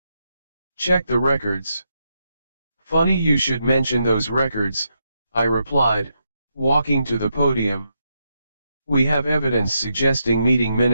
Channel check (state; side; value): inverted; both; correlation -0.82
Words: Check the records." "Funny you should mention those records," I replied, walking to the podium. "We have evidence suggesting meeting